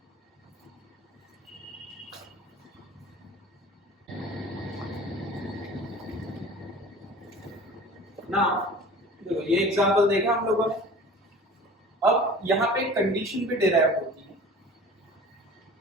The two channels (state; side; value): normal; both; correlation 0.42